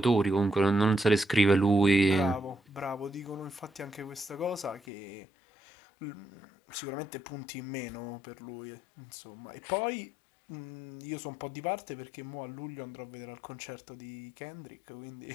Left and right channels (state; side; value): drops out; right; at 4.8 s